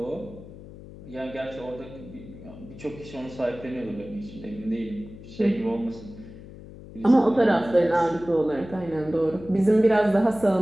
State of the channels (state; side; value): noise; left; hum, 16 dB below the sound